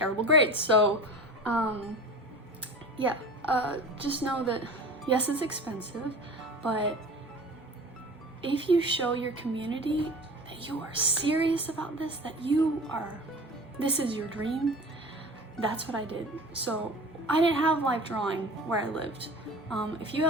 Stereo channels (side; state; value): both; normal; correlation 0.38